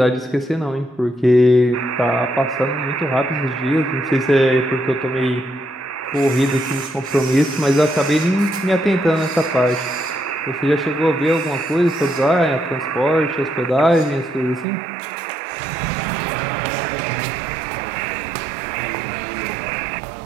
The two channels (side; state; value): left; drops out; at 14.7 s